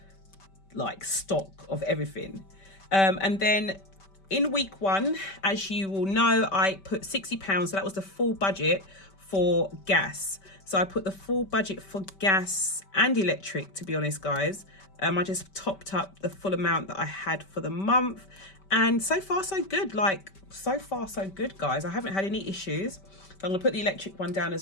like stock of everything. And then in week 1, as you will know, I put £60. So that was the full budget for gas. So I put the full budget for gas and electric, to be honest, guys. I just topped up the full amount that I had for the month. And so far, so good. Like, so far, so good, guys. I haven't had any issues. So I'm going to put the electric one down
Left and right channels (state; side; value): late; right; 5.2 ms